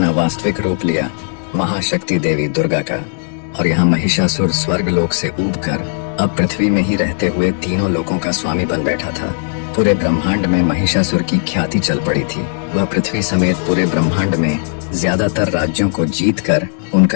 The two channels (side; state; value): right; silent; digital silence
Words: वास्तविक रूप लिया, महाशक्ति देवी दुर्गा का। और यहाँ महिषासुर स्वर्ग लोक से ऊबकर अब पृथ्वी में ही रहते हुए तीनों लोकों का स्वामी बन बैठा था। पूरे ब्रह्मांड में महिषासुर की ख्याति चल पड़ी थी। वह पृथ्वी समेत पूरे ब्रह्मांड में ज्यादातर राज्यों को जीतकर